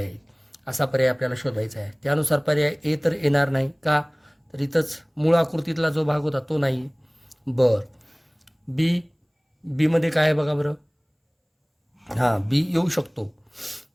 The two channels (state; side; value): identical; both; correlation 1.00